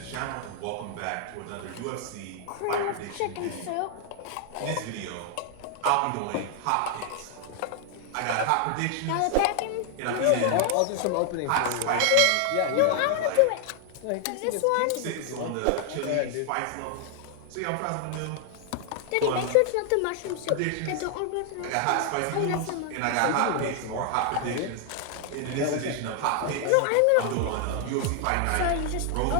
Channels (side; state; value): both; different; correlation 0.00